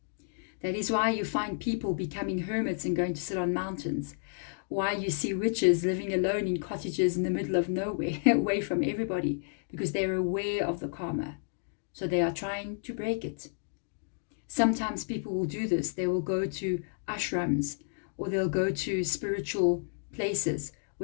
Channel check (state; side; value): silent; right; digital silence